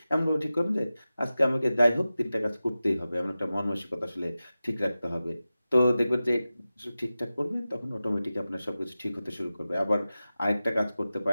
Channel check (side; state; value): both; inverted; correlation -0.95